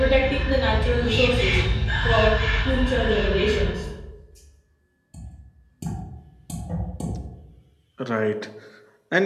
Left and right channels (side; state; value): both; identical; correlation 1.00